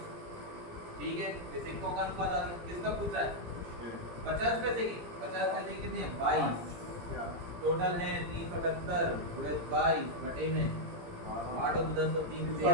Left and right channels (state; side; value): late; left; 17 ms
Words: ठीक है, ये सिक्कों का अनुपात आ गया। किसका पूछ रहा है? 50 पैसे की। 50 पैसे की कितनी है? 22। टोटल है 378 × 22 बटे में 8 और 10 और 3 13,